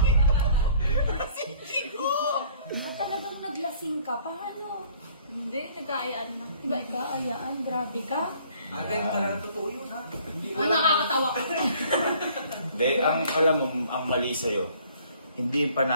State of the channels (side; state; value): both; inverted; correlation -0.56